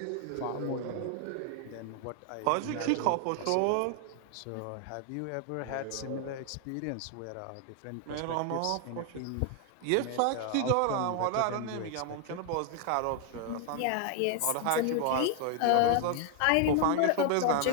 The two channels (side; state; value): both; different; correlation 0.00